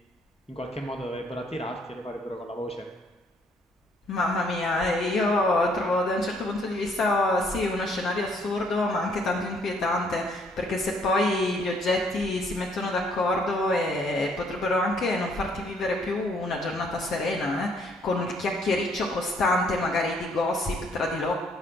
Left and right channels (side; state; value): both; normal; correlation 0.65